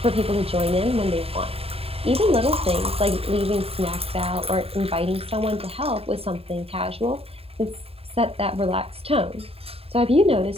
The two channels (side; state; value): left; late; 0.28 ms